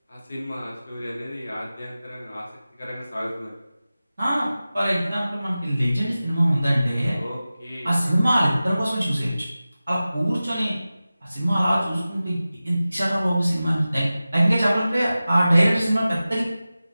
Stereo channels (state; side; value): inverted; both; correlation -0.96